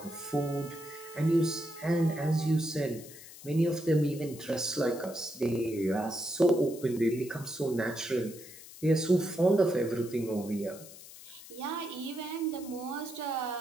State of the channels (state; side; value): noise; left; hiss, 17 dB below the sound